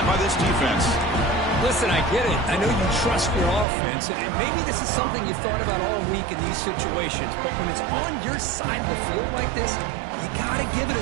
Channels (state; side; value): drops out; left; at 3.7 s